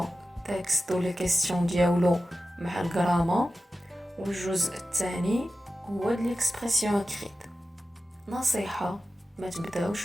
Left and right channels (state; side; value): normal; both; correlation 0.93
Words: تكست و لي كيسيون ديالو مع الجرامر، والجزء الثاني هو د ليكسبرسيون اكريت. نصيحه ما تبداوش